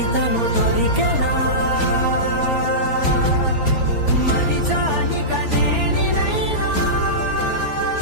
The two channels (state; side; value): late; right; 4.3 ms